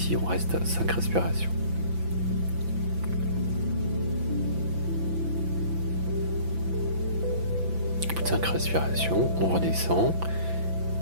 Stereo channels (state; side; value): late; left; 5.9 ms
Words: on reste à 5 respirations. Au bout de 5 respirations, on redescend